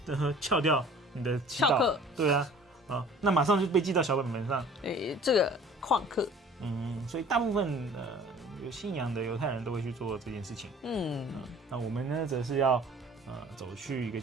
翘掉你的祈祷。翘课。对啊，那马上就被记到小本本上。这个旷课。所以大部分有信仰的犹太人都会去做这件事情。那我们呢，则是要。走去一个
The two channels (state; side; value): normal; both; correlation 0.48